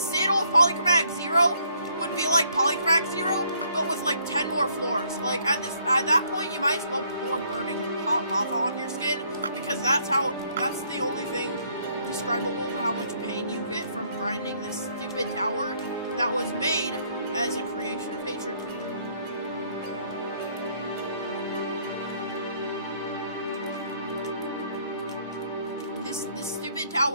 Citadel Polychromatic 0 would be like Polychromatic 0, but with like 10 more floors. Like at that point, you might as well pour burning hot lava on your skin, because that's the only thing describable to how much pain you get from grinding this stupid tower that was made as a creation of hatred. This stupid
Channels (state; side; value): inverted; both; correlation -0.67